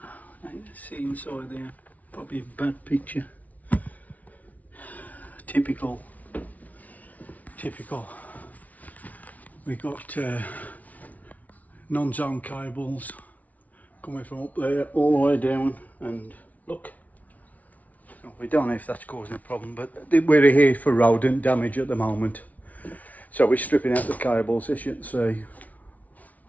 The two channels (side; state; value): right; late; 0.072 ms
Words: can see inside there, probably a bad picture. Typical. We got non-zone cables coming from up there all the way down, and look, we don't know if that's causing a problem, but we're here for rodent damage at the moment, so we're stripping out the cables. As you can see,